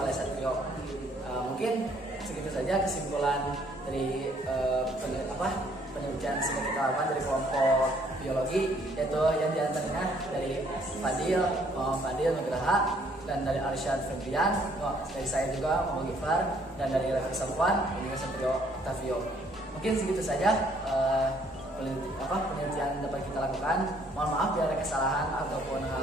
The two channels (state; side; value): normal; both; correlation 0.64